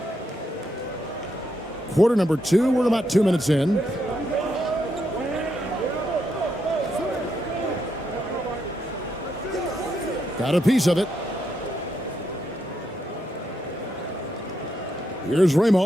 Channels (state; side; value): normal; both; correlation 0.80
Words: Quarter number 2, we're about 2 minutes in. Got a piece of it. Here's